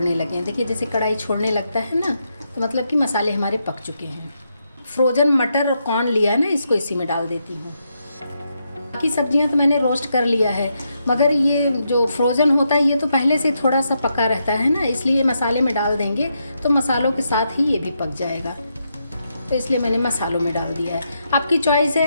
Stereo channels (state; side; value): inverted; both; correlation -0.81